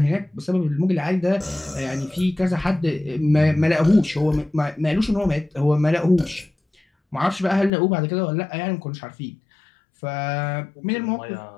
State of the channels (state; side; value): drops out; right; at 7.7 s